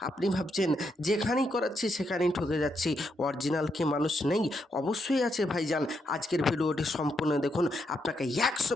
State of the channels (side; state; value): both; normal; correlation 0.80